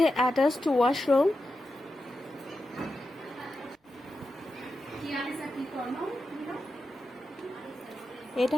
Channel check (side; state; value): both; normal; correlation 0.89